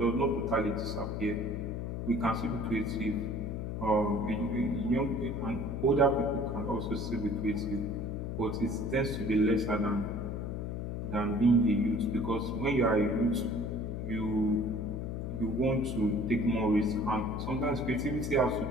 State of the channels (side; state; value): left; noise; hum, 4 dB below the sound